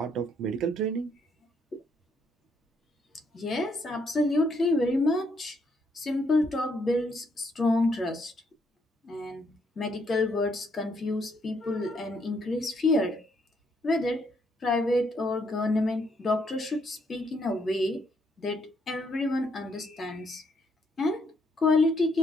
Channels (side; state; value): both; normal; correlation 0.73